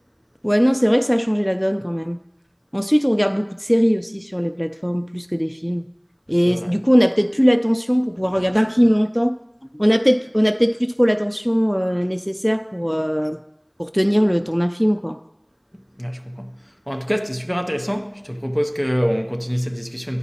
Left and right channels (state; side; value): identical; both; correlation 1.00